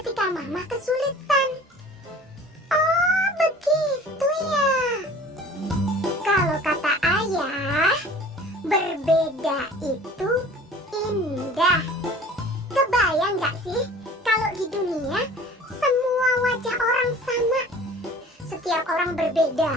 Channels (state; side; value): normal; both; correlation 0.45